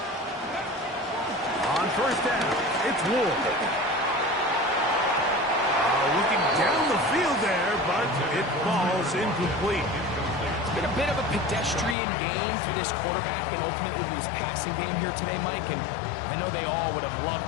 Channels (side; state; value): right; drops out; at 12.0 s